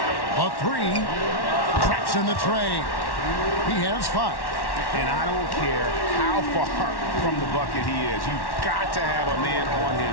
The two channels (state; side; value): late; right; 1.1 ms